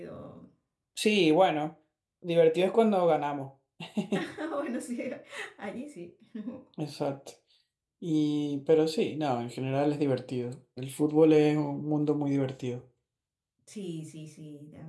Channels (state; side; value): identical; both; correlation 1.00